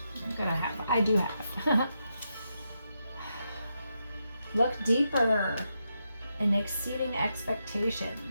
I do have. Look deeper in exceeding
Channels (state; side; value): inverted; both; correlation -0.84